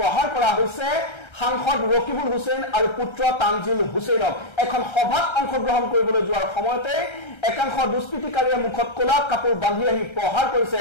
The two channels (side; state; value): right; late; 1.3 ms